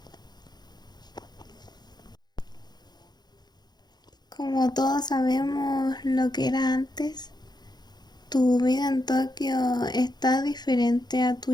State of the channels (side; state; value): right; late; 0.20 ms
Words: Como todos sabemos lo que era antes, ¿tu vida en Tokio está diferente a